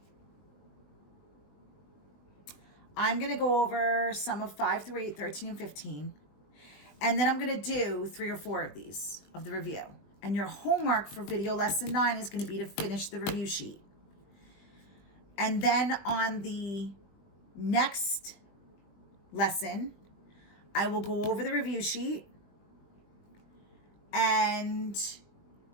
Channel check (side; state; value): right; late; 20 ms